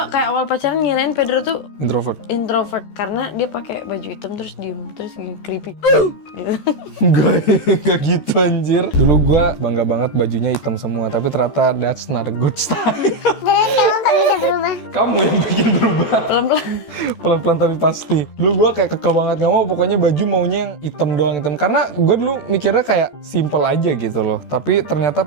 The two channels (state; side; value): late; right; 14 ms